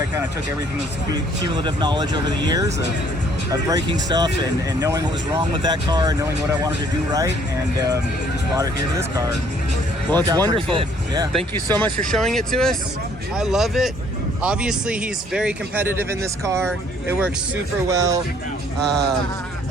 kind of took everything that's cumulative knowledge over the years of breaking stuff and knowing what was wrong with that car and knowing what I wanted to do right, and just brought it here to this car. Well, it's wonderful. Yeah. Thank you so much for showing it to us. I love it. Obviously, he's very competitive in this car. It works super well.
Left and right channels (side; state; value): both; normal; correlation 0.61